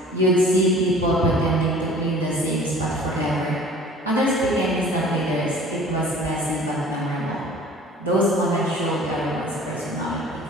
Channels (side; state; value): both; normal; correlation 0.47